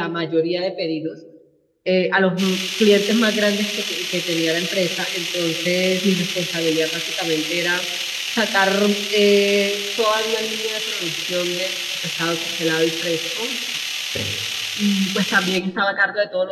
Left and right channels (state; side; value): identical; both; correlation 1.00